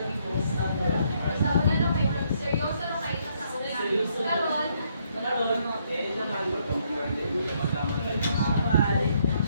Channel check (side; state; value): both; inverted; correlation -0.71